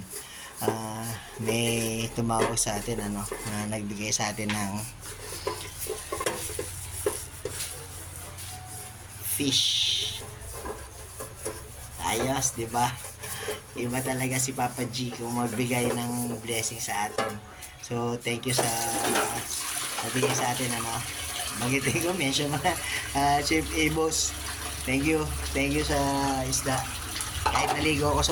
May tumawag sa atin na nagbigay sa atin ng fish. Ayos, di ba? Iba talaga si Papa G kung magbigay ng blessing sa atin. So, thank you sa nabigay sa atin, magitin ko, mention mo na, Chef Abos. Thank you. Thank you sa isda. Kahit naligo ako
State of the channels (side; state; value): both; identical; correlation 1.00